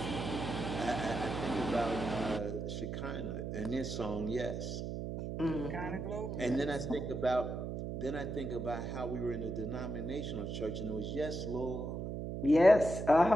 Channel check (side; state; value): right; noise; hum, 4 dB below the sound